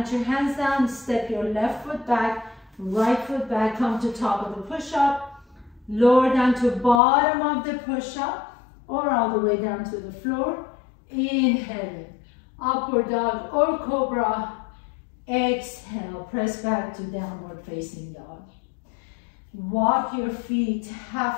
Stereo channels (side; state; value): right; drops out; at 7.0 s